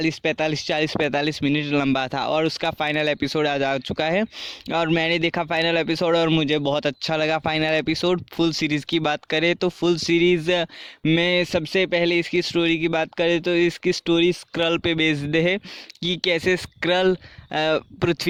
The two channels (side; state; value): both; identical; correlation 1.00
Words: मिनट लंबा था और उसका फाइनल एपिसोड आज आ चुका है। और मैंने देखा फाइनल एपिसोड और मुझे बहुत अच्छा लगा फाइनल एपिसोड। फुल सीरीज़ की बात करें तो फुल सीरीज़ में सबसे पहले इसकी स्टोरी की बात करें तो इसकी स्टोरी स्क्रल पे बेस्ड है कि कैसे स्क्रल